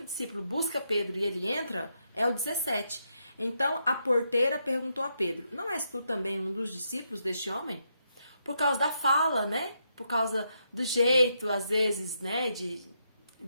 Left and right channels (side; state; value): both; inverted; correlation -0.80